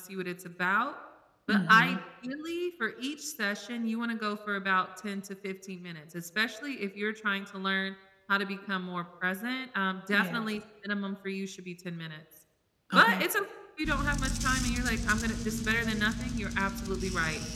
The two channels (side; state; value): both; identical; correlation 1.00